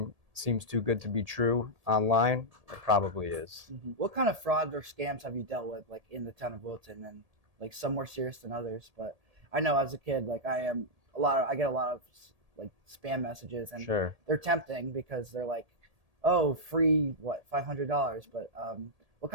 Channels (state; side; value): late; left; 1.8 ms